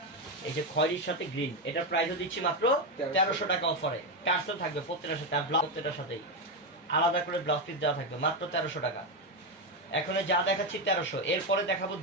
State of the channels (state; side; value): normal; both; correlation 0.09